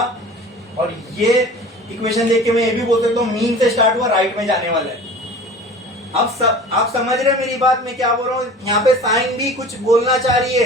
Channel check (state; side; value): normal; both; correlation 0.41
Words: और ये इक्वेशन देख के मैं ये भी बोल सकता हूँ मीन से स्टार्ट हुआ, राइट में जाने वाला है। अब आप समझ रहे हैं मेरी बात, मैं क्या बोल रहा हूँ, यहाँ पे साइन भी कुछ बोलना चाह रही